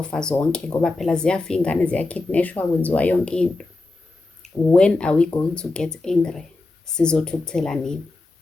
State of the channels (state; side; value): quieter; right; 3.2 dB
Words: zonke, ngoba phela ziyafa ingane, ziyakidnashwa, kwenziwa yonke into. when are we going to get angry? Sizothukuthela nini?